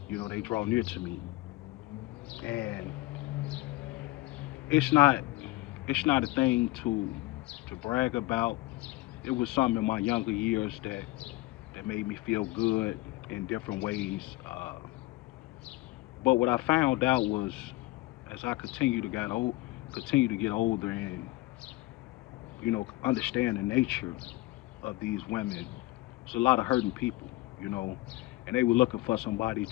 they draw near to me. And it's not it's not a thing to brag about. It was something in my younger years that made me feel good in different ways. But what I found out was, as I continue to get older and understand the nature of these women, there's a lot of hurting people, you know, and they were looking for somebody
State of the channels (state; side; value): quieter; right; 19.9 dB